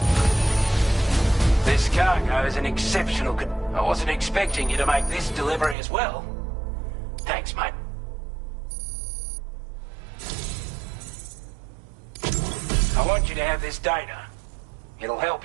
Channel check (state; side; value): drops out; left; at 5.8 s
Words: This cargo is an exceptional I wasn't expecting you to make this delivery as well. Thanks, mate. want you to have this data. It'll